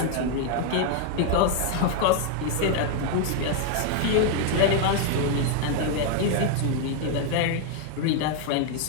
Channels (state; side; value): different; both; correlation 0.00